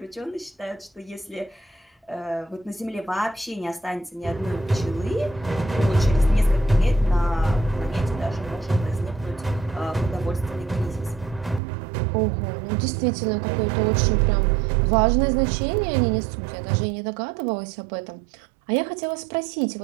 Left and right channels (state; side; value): drops out; left; at 11.6 s